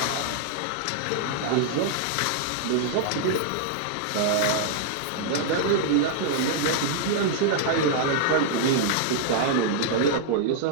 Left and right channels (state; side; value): different; both; correlation -0.01